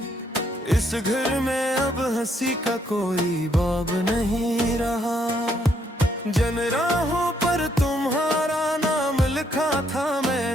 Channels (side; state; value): both; normal; correlation 0.72